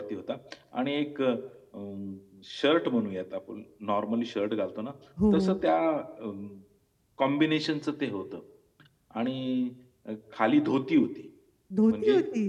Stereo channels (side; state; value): both; identical; correlation 1.00